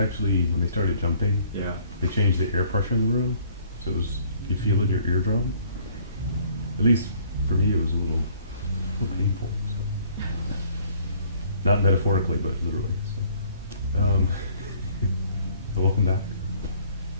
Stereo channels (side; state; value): both; inverted; correlation -0.59